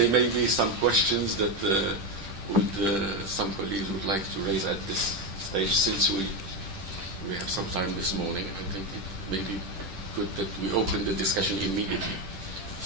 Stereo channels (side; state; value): left; late; 10 ms